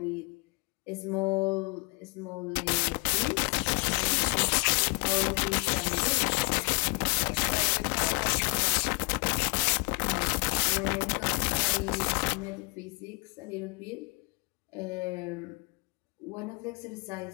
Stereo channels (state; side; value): quieter; right; 31.3 dB